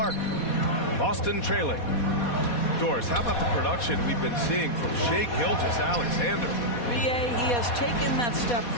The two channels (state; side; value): late; right; 4.2 ms